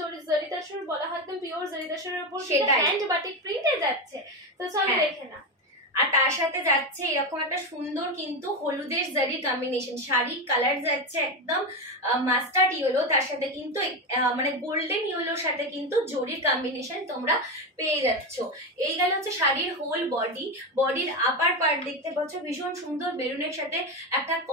তসর বলা হয়, একদম পিওর জারি তসরের উপর সেটা হ্যান্ড বাটিক প্রিন্টে যাচ্ছে। তো চলো দেখে না। আর তার সাথে যাচ্ছে এরকম একটা সুন্দর কিন্তু হলুদের জারির কম্বিনেশন, শাড়ির কালার যাচ্ছে একদম মাস্টার্ড ইয়েলো, তার সাথে কিন্তু মানে গোল্ডেন ইয়েলোর সাথে কিন্তু জরির কম্বিনেশন তোমরা পেয়ে যাচ্ছ। এই গেল হচ্ছে শাড়ির হোল বডির আপার পার্ট দেখতে পাচ্ছ ভীষণ সুন্দর মেরুনের সাথে একটা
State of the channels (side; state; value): both; normal; correlation 0.14